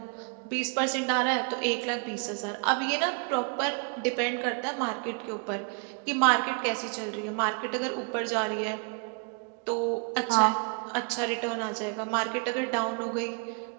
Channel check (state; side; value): quieter; left; 37.3 dB